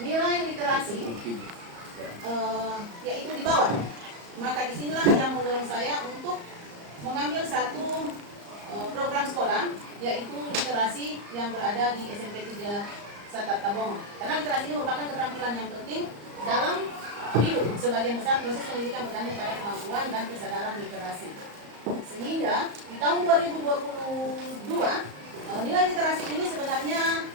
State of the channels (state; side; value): late; left; 34 ms